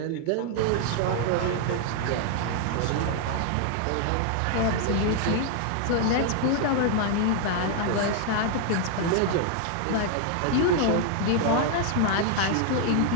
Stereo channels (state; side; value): different; both; correlation 0.00